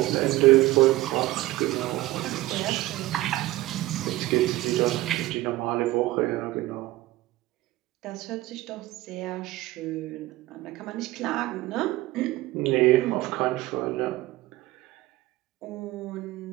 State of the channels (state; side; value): quieter; left; 17.6 dB